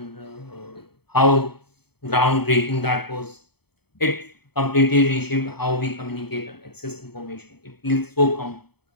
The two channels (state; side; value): late; right; 0.97 ms